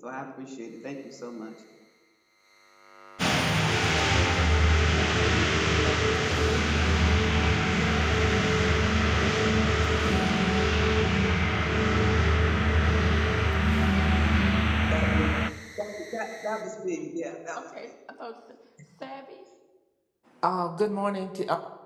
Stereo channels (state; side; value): identical; both; correlation 1.00